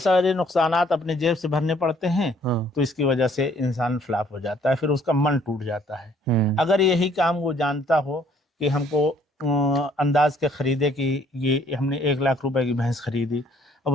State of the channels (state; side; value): normal; both; correlation 0.62